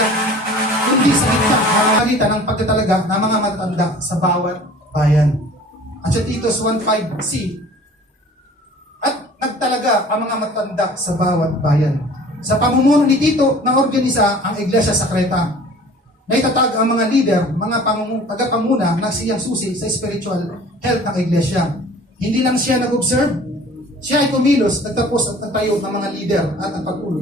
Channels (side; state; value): both; normal; correlation 0.47